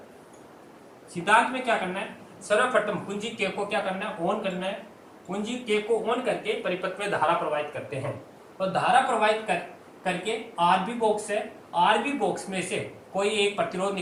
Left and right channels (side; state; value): both; identical; correlation 1.00